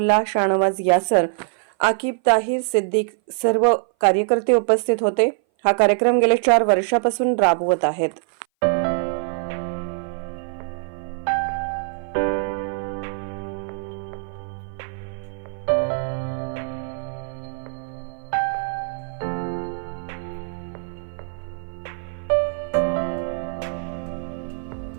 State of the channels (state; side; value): silent; left; 59 dB below the other